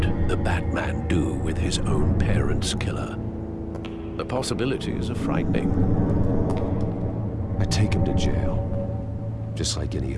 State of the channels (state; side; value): identical; both; correlation 1.00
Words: the Batman do with his own parents' killer? The possibilities are frightening. I take him to jail, just like any